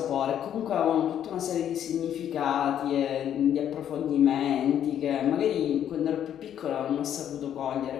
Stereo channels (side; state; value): right; quieter; 10.0 dB